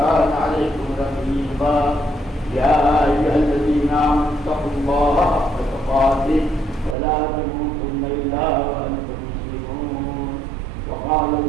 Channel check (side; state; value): left; drops out; at 7.0 s